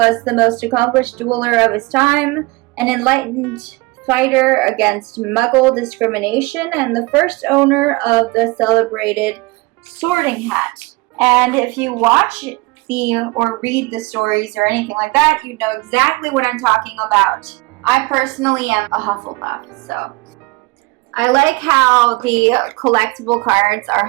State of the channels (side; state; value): left; quieter; 23.6 dB